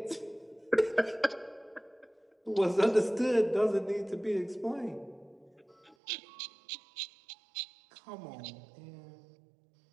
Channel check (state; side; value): drops out; left; at 6.0 s